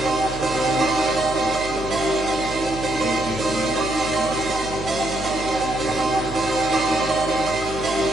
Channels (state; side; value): noise; right; hum, 12 dB below the sound